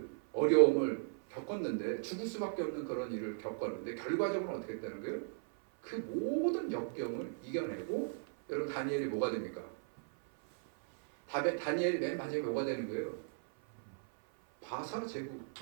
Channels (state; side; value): silent; left; 53 dB below the other